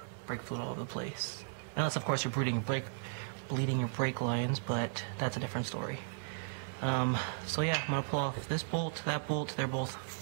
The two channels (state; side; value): silent; left; 54 dB below the other